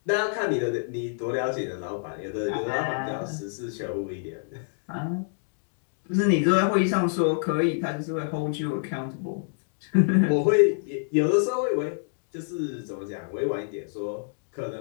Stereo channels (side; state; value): right; silent; digital silence